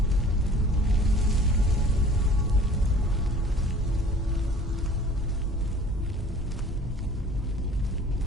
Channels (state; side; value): normal; both; correlation 0.48